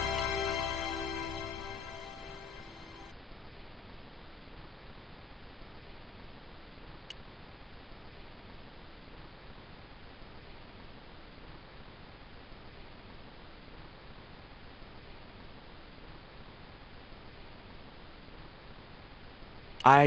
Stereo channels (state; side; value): normal; both; correlation 0.89